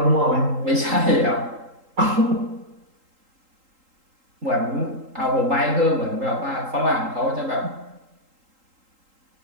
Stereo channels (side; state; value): left; late; 3.8 ms